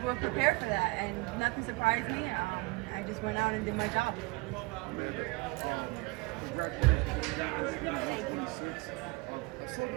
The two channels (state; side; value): quieter; left; 26.1 dB